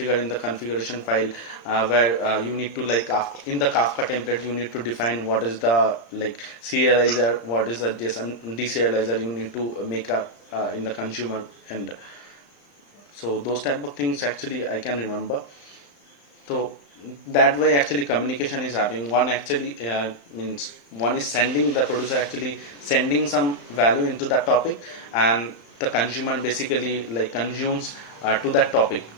in the configuration file, where you need to like in the Kafka template, you need to define what is the like serializer, what is the deserializer you need to make in the consumer end. So those type of things actually I can remember. So that way actually communication is happening. One actually means one is sending, the producer actually sending some value into that topic, and the consumer basically like consumes to that topic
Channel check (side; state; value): right; late; 35 ms